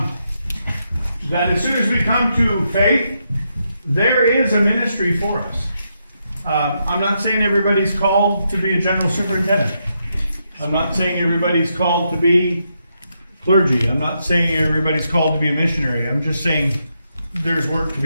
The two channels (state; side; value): inverted; both; correlation -0.81